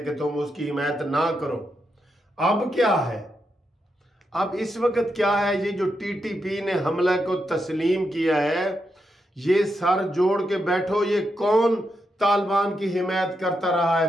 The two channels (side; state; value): both; normal; correlation 0.84